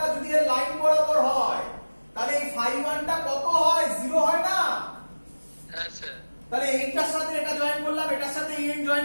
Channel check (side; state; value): both; inverted; correlation -1.00